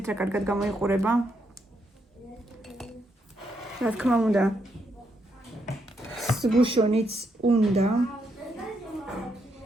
რა კარგად გამოიყურება. რა თქმა უნდა, სგუშონიც უნდა.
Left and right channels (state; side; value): normal; both; correlation 0.78